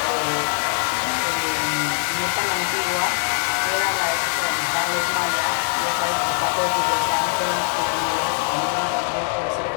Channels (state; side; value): silent; right; 64 dB below the other